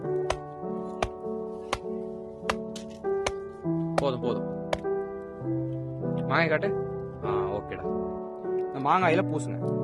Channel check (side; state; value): both; identical; correlation 1.00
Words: போதும் போதும். மாங்காய் காட்டு. ஓகேடா. இந்த மாங்காயில பூசுங்க.